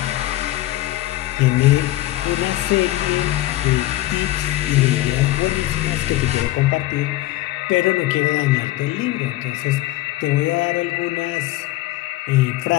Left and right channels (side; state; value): right; quieter; 16.5 dB